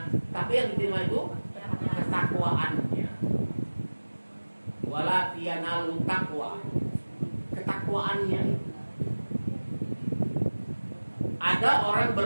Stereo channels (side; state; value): both; inverted; correlation -1.00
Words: tapi yang diterima itu ketakwaannya. Wala yanalu taqwa. Ketakwaannya. Ada orang